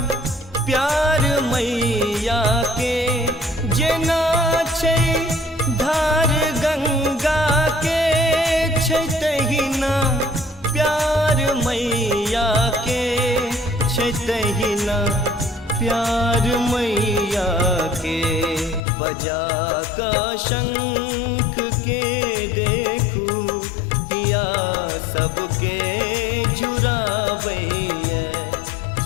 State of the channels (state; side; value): drops out; right; at 18.8 s